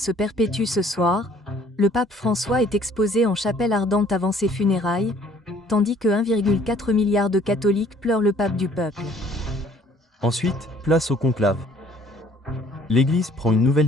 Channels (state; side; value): normal; both; correlation 0.58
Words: perpétuent ce soir. Le pape François est exposé en chapelle ardente avant ses funérailles, tandis que 1,4 milliard de catholiques pleurent le pape du peuple. Ensuite, place au conclave. L'Église prend une nouvelle